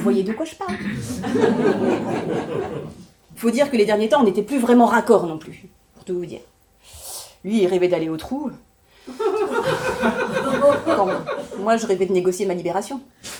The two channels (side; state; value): both; identical; correlation 1.00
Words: de quoi je parle. Faut dire que les derniers temps, on n'était plus vraiment raccord non plus, pour tout vous dire. Lui, il rêvait d'aller au trou. Quand moi, je rêvais de négocier ma libération.